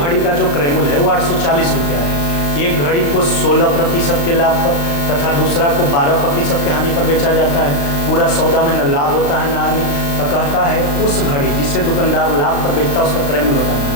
का जो क्रयमूल्य है वो 840 रुपया है। एक घड़ी को 16% के लाभ पर तथा दूसरा को 12% के हानि पर बेचा जाता है। पूरा सौदा में न लाभ होता है न हानि। तो कहता है उस घड़ी जिसे दुकानदार लाभ पर बेचता है उसका क्रयमूल्य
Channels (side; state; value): right; late; 35 ms